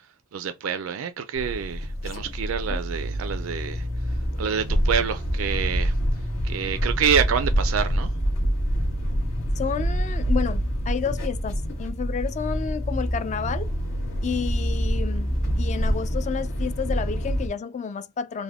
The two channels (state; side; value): normal; both; correlation 0.61